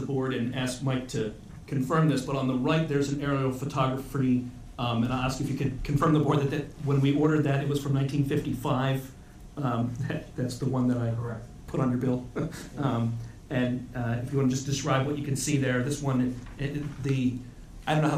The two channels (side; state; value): both; identical; correlation 1.00